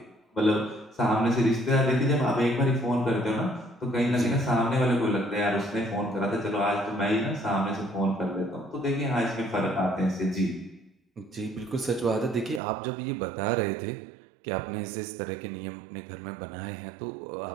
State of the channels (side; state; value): left; drops out; at 12.6 s